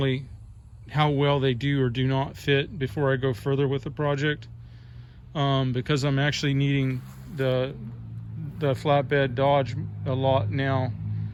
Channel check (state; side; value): identical; both; correlation 1.00